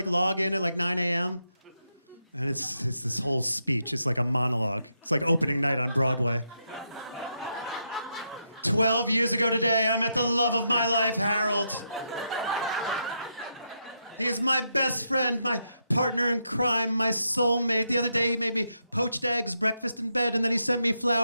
log in at like 9 a.m. And it's this whole speech. It's like a monologue. It's like opening night on Broadway. 12 years ago today, I met the love of my life, Harold. He is my best friend, my partner in crime, my soulmate. The other day, he made me poached eggs, breakfast in bed, and then he sent me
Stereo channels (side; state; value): both; inverted; correlation -0.82